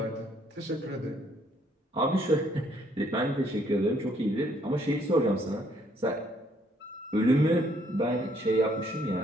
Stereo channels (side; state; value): both; normal; correlation 0.67